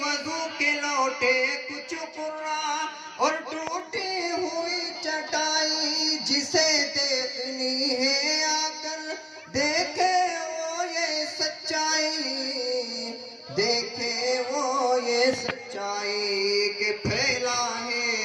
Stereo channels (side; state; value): both; identical; correlation 1.00